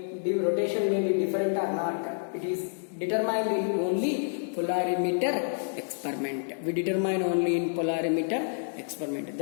the rotation may be different or not. It is determined in only polarimeter experiment. We determine only in polarimeter experiment.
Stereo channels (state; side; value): silent; right; digital silence